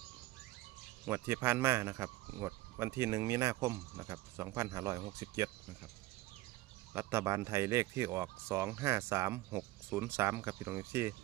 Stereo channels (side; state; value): left; quieter; 17.8 dB